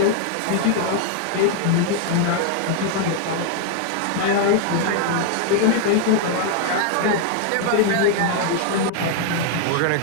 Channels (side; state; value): both; different; correlation 0.00